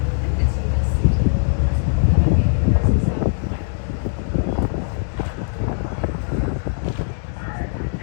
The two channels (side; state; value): right; silent; digital silence